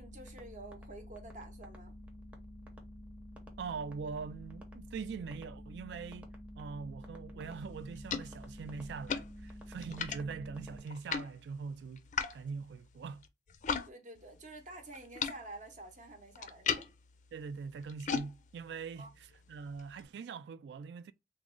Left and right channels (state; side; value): normal; both; correlation 0.24